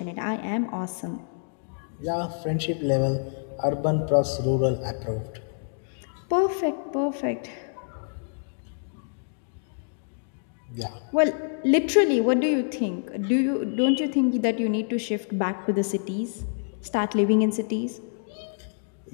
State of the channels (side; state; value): right; silent; digital silence